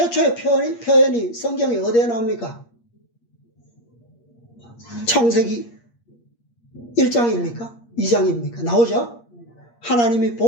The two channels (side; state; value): right; late; 8.5 ms